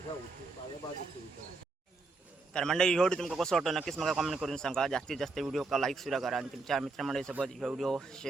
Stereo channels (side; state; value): left; quieter; 3.7 dB